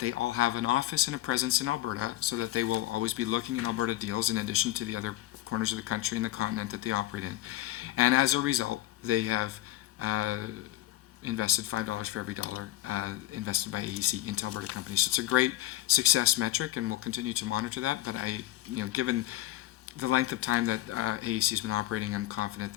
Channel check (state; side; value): quieter; right; 15.4 dB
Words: they all have an office and a presence in Alberta so that they will always be looking in Alberta deals in addition to the other corners of the country and the continent that they operate in. And as a result, they have invested $5 for every dollar invested by AEC into Alberta companies. So it's a great success metric, and we'll continue to monitor that. But given the length of time that AEC has been operating, I'm confident